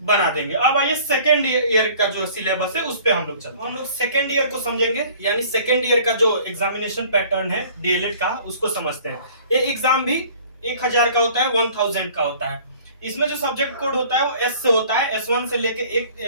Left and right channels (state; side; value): inverted; both; correlation -0.50